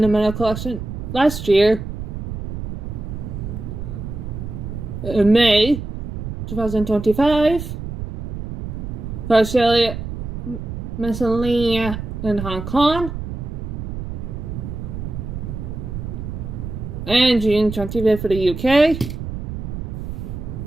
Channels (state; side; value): noise; right; rumble, 6 dB below the sound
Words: the Meta Collection last year, in May 2025, for Australia, Oceania, and Hong Kong, and June 25th for the UK.